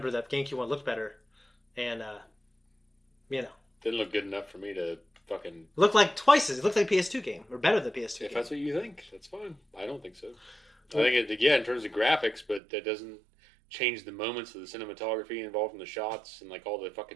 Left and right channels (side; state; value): left; drops out; at 12.6 s